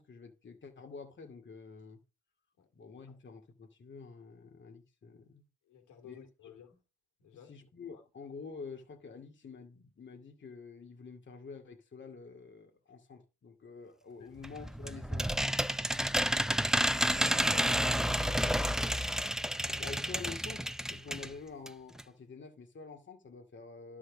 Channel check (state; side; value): normal; both; correlation 0.82